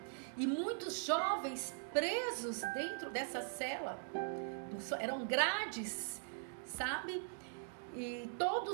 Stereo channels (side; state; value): left; silent; digital silence